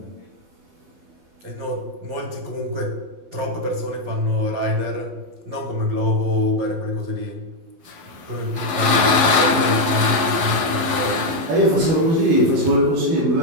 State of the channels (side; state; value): left; late; 11 ms